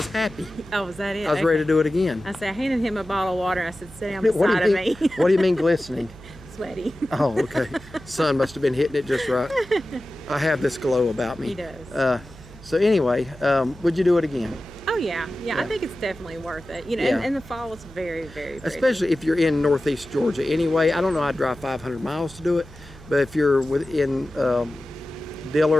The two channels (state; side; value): noise; right; hum, 19 dB below the sound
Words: happy. Oh, was that it? I was ready to do it again. I said, I handed him a bottle of water. I said, sit down What do beside you of mean? me. What do you mean glistening? Sweaty. Oh, okay. Sun must have been hitting it just right. I have this glow about me. He does. So anyway, would you do it again? Oh yeah, I think it's definitely worth it. You know, Yeah. and the fall was very, very pretty. Especially if you're in northeast Georgia anyway. I don't know, I'd drive 500 miles to do it, but if you're within